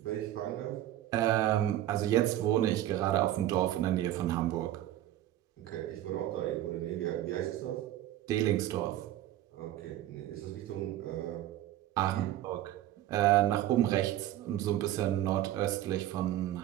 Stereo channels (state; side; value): quieter; left; 13.3 dB